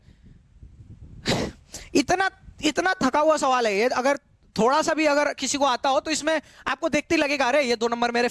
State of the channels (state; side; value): identical; both; correlation 1.00